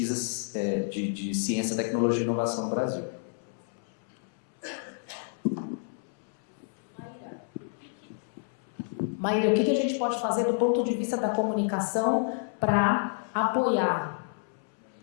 de ciência, tecnologia e inovação no Brasil. Maíra, o que a gente pode fazer do ponto de vista da comunicação para apoiar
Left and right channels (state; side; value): silent; right; 58 dB below the other